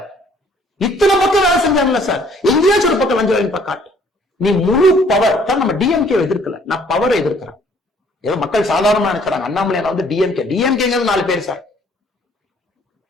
இத்தனை பக்கம் வேலை செஞ்சாங்கல்ல சார், எங்கேயாச்சும் ஒரு பக்கம் லஞ்சம் வாங்கி காட்டு. நீ முழு பவர் தான். நம்ம டிஎம்கே எதிர்க்கல, நான் பவரை எதிர்க்கிறேன். ஏதோ மக்கள் சாதாரணமா நினைக்கிறாங்க அண்ணாமலை வந்து டிஎம்கே 4 பேர் sir.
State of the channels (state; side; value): normal; both; correlation 0.60